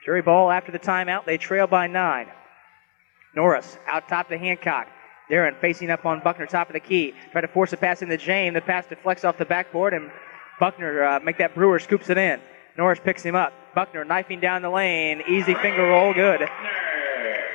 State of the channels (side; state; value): right; silent; 64 dB below the other